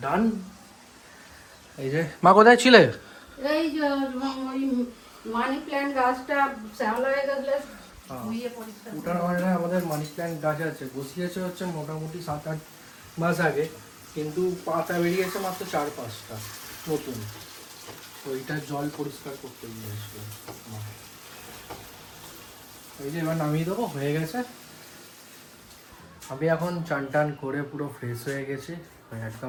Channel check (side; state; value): both; identical; correlation 1.00